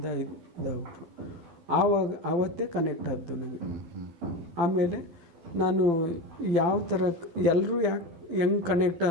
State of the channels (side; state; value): left; late; 12 ms